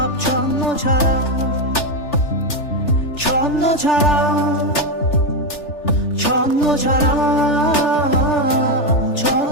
ছন্ন ছাড়া ছন্ন ছাড়া ছন্ন ছাড়া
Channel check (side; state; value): right; late; 3.4 ms